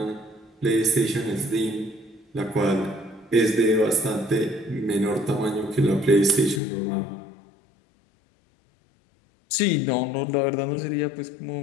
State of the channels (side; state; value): right; drops out; at 6.6 s